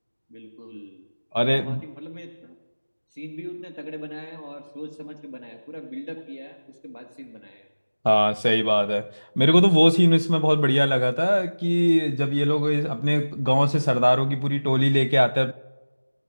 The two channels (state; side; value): inverted; both; correlation -1.00